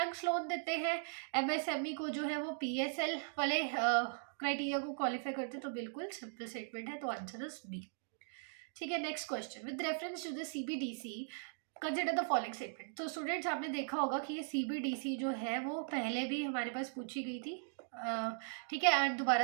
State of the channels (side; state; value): left; silent; digital silence